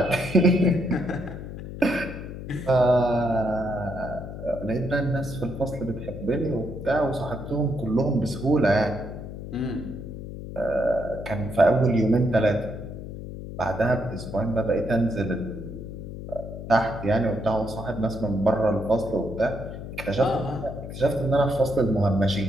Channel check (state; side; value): noise; left; hum, 10 dB below the sound